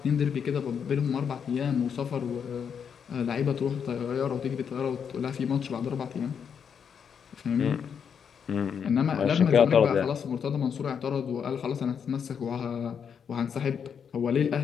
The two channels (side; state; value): right; quieter; 7.2 dB